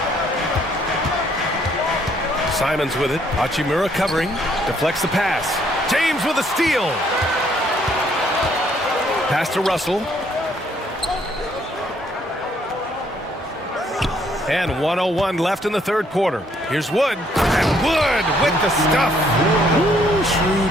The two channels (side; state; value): both; normal; correlation 0.67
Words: Simons with it. Hachimura covering. Deflects the pass. James with a steal. Pass to Russell. And 1:01 left in the third quarter. Here's Wood. And Wood with the stuff. Ooh, shrewd